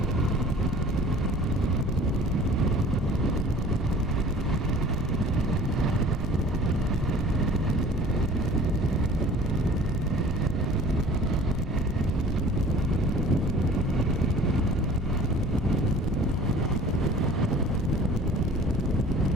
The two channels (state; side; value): normal; both; correlation 0.47